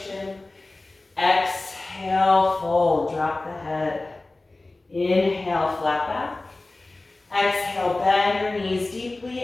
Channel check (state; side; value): quieter; right; 3.0 dB